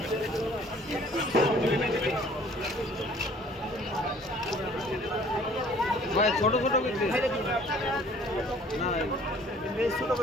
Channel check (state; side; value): normal; both; correlation 0.54